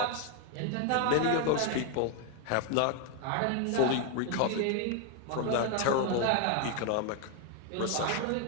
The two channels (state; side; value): different; both; correlation 0.01